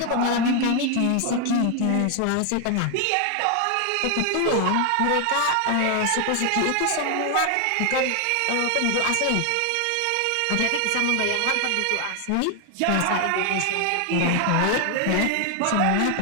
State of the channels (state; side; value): different; both; correlation 0.00